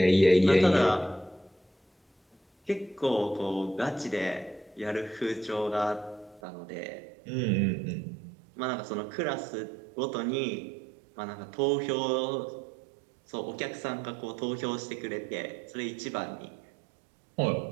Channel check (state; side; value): drops out; left; at 6.4 s